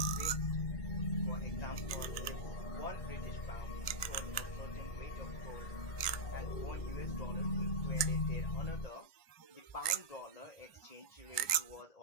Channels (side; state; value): right; late; 1.2 ms